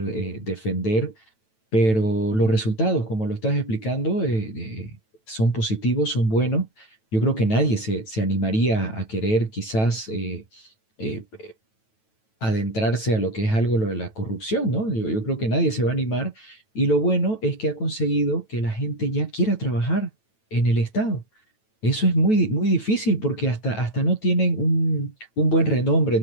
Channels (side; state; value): right; late; 9.1 ms